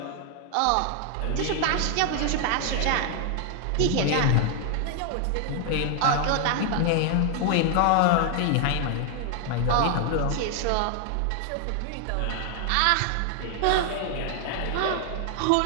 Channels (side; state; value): both; different; correlation 0.00